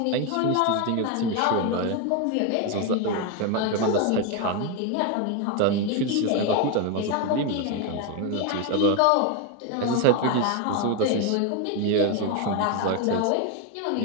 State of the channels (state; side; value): different; both; correlation 0.02